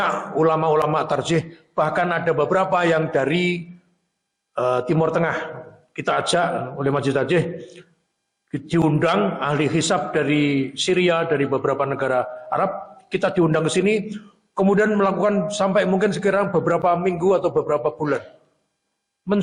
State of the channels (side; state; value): both; identical; correlation 1.00